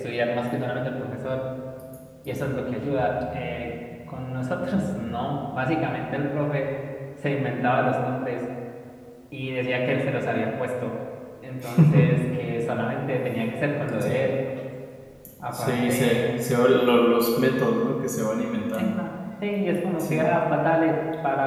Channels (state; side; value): identical; both; correlation 1.00